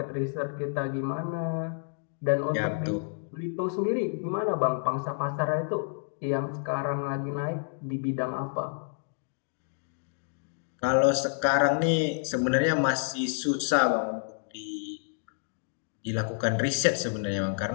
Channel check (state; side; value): silent; right; digital silence